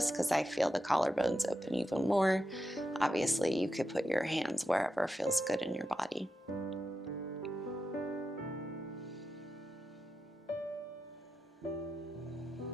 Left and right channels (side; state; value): both; normal; correlation 0.88